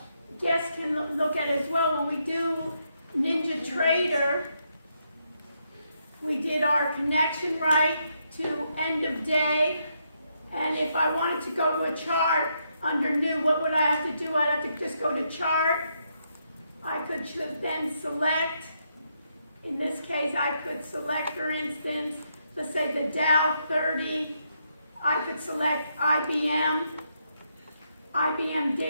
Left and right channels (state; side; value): inverted; both; correlation -0.78